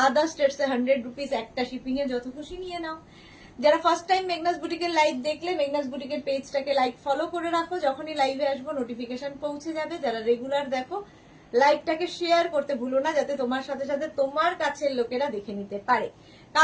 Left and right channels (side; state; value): both; identical; correlation 1.00